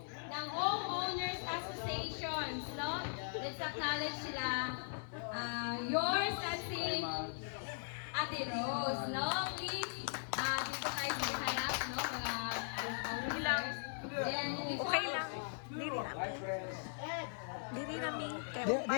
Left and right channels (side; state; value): right; silent; digital silence